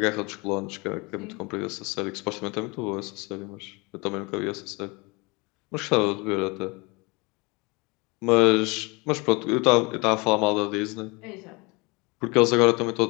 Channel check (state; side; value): quieter; right; 26.8 dB